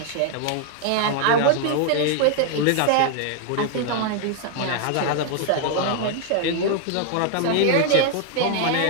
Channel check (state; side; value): different; both; correlation 0.00